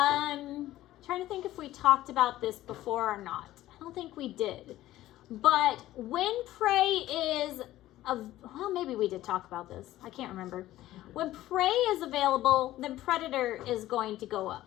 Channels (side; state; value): right; quieter; 15.0 dB